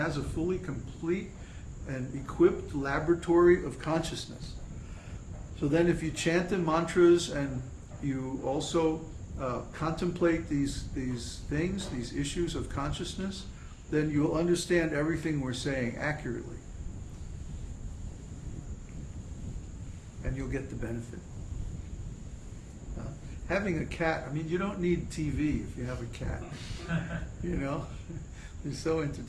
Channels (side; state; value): both; identical; correlation 1.00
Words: a fully complete and equipped laboratory of consciousness. So then if you chant the mantras and you also contemplate these things, these issues of consciousness, then you'll understand everything we're saying accurately. And you'll get the benefit. Having a cat, I mean, you don't need TV if you have a cat. You know? They're so